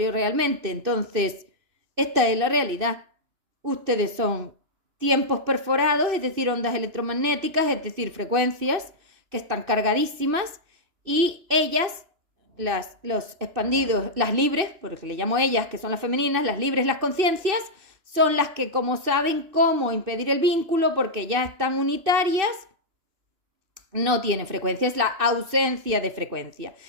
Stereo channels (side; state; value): left; late; 2.6 ms